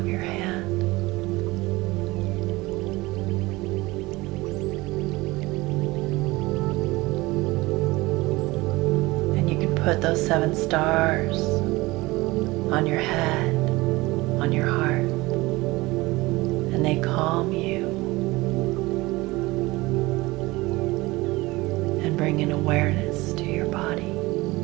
your hand. And you can put those 7 stars on your head, on your heart. And they calm you. bring an awareness to your body,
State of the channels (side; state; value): left; quieter; 21.1 dB